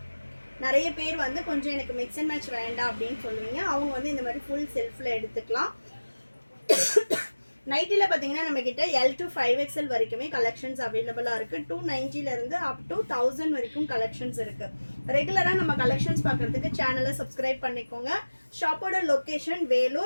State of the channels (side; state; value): both; inverted; correlation -1.00